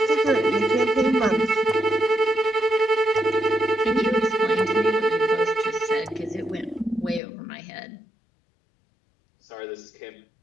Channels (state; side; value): drops out; right; at 7.2 s